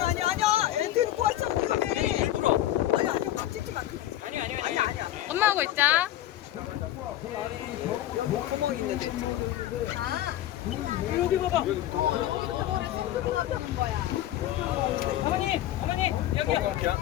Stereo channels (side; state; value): right; quieter; 13.4 dB